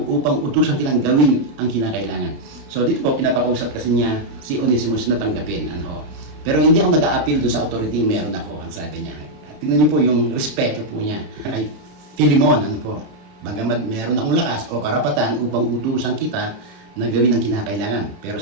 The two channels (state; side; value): late; left; 31 ms